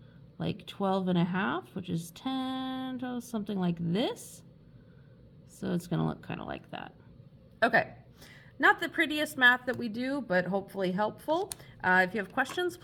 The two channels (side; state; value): both; identical; correlation 1.00